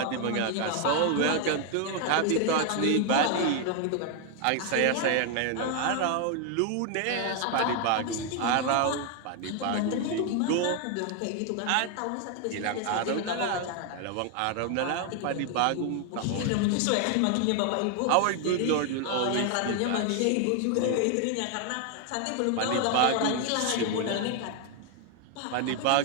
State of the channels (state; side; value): different; both; correlation 0.00